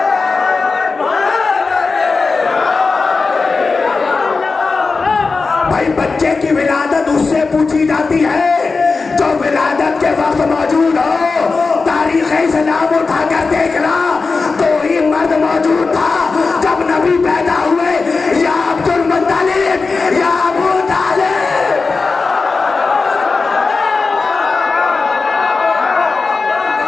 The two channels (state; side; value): quieter; right; 4.2 dB